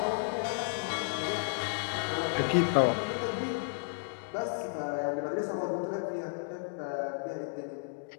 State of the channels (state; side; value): silent; right; digital silence